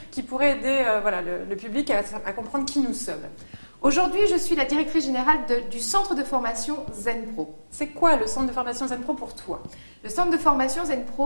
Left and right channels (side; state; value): both; inverted; correlation -1.00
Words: qui pourrait aider le public à comprendre qui nous sommes? Aujourd'hui, je suis la directrice générale du centre de formation ZenPro. C'est quoi le centre de formation ZenPro pour toi? Le centre de formation